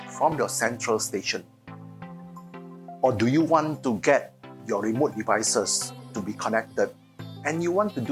from your central station? Or do you want to get your remote devices to be connected and you want to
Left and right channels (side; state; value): both; identical; correlation 1.00